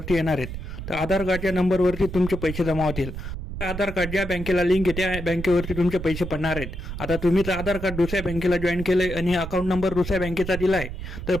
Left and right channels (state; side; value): noise; right; rumble, 8 dB below the sound